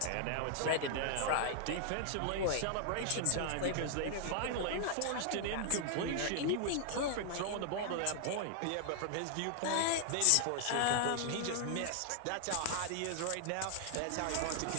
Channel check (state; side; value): different; both; correlation 0.00